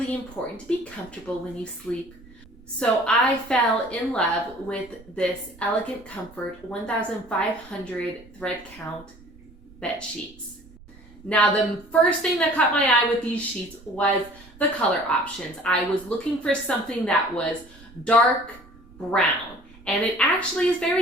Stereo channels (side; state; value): right; noise; rumble, 24 dB below the sound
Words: important to be comfortable when you sleep. So I fell in love with this Elegant Comfort 1500 thread count bed sheets. Now, the first thing that caught my eye with these sheets was the color options. I was looking for something that was dark brown, and it actually is